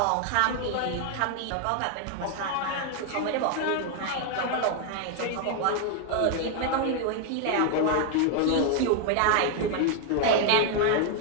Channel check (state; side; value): different; both; correlation 0.00